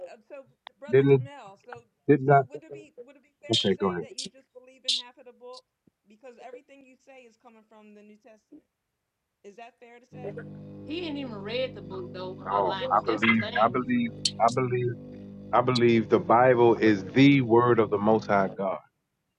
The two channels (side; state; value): both; identical; correlation 1.00